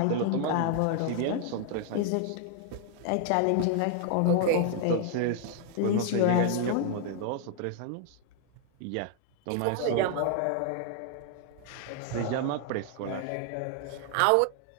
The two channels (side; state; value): both; different; correlation 0.00